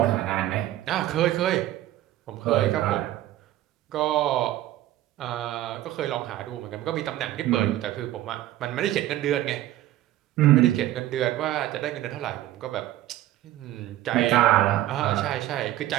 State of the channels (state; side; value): quieter; left; 14.3 dB